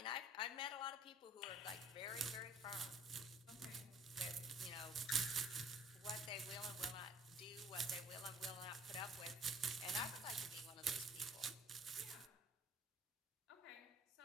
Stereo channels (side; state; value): both; normal; correlation 0.54